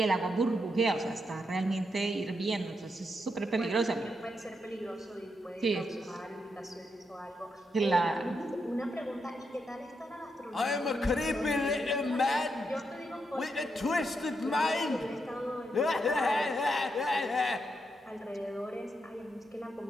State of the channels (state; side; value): normal; both; correlation 0.82